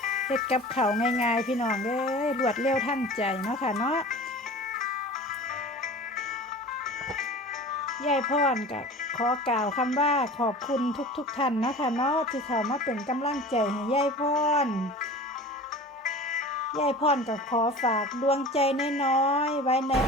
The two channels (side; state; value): both; normal; correlation 0.38